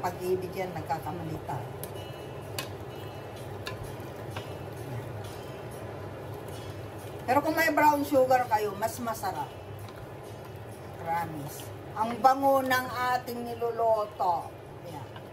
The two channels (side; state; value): both; identical; correlation 1.00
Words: pag-ibig yan, nagkakamali tayo. Pero kung may brown sugar kayo, mas masarap. Promise. Ang bango ng ating niluluto. Ayan.